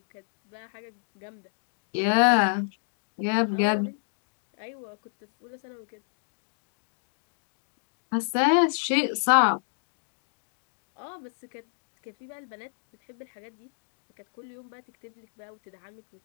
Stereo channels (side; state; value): right; silent; digital silence